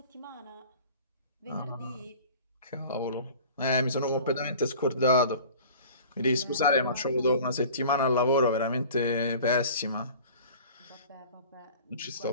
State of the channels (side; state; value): both; inverted; correlation -0.44